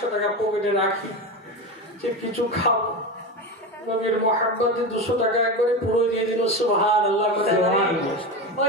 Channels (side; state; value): both; normal; correlation 0.21